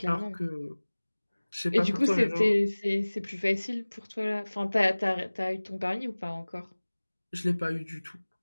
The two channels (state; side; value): inverted; both; correlation -1.00